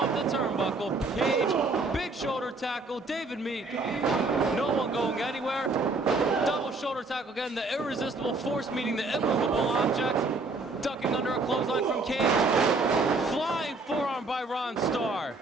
the turnbuckle. Cage, big shoulder tackle. David Meek, no one going anywhere. Double shoulder tackle again. The irresistible force meeting the immovable object. Ducking under a clothesline from Cage. Flying forearm by Ron Starr.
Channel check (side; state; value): left; quieter; 3.4 dB